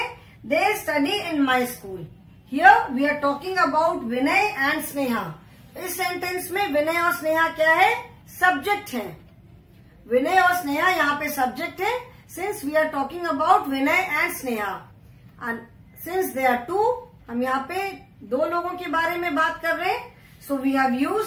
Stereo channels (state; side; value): identical; both; correlation 1.00